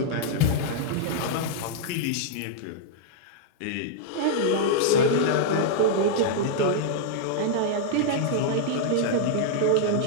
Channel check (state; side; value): different; both; correlation -0.01